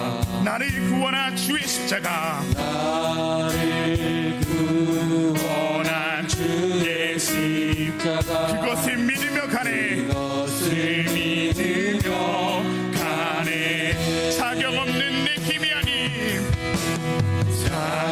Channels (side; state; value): both; identical; correlation 1.00